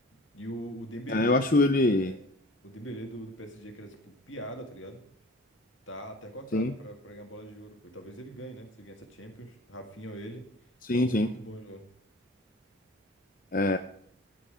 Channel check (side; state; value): both; normal; correlation 0.43